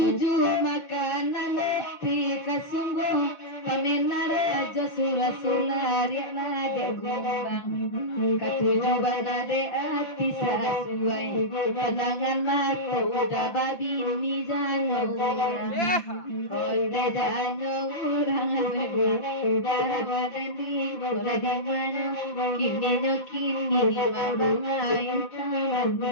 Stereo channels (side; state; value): right; late; 5.9 ms